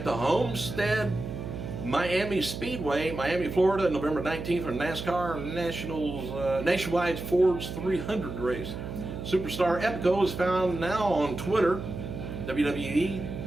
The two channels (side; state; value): right; noise; hum, 7 dB below the sound